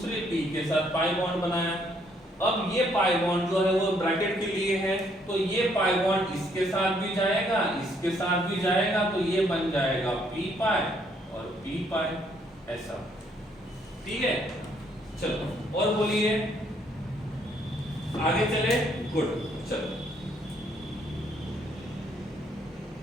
p के साथ पाई बॉन्ड बनाया। अब ये पाई बॉन्ड जो है वो ब्रैकेट के लिए है, तो ये पाई बॉन्ड इसके साथ भी जाएगा, इसके साथ भी जाएगा, तो ये बन जाएगा पी पाई और पी पाई, ऐसा। ठीक है, चलो और बोलिए, आगे चले। गुड, चलो।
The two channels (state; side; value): normal; both; correlation 0.68